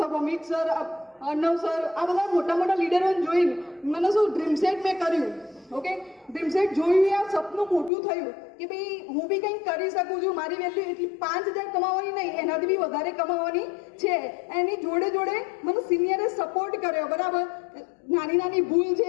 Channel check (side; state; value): right; drops out; at 7.9 s